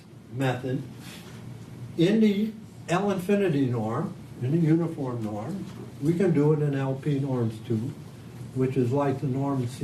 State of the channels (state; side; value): identical; both; correlation 1.00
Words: method in the L infinity norm, in the uniform norm. We can do it in LP norms too, which is like the norm